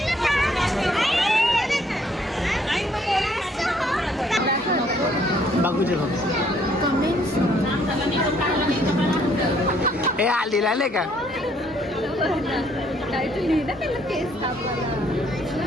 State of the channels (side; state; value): both; normal; correlation 0.65